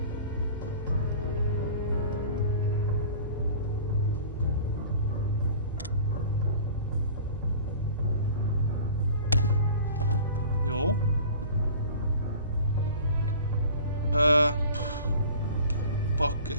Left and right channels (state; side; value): inverted; both; correlation -0.42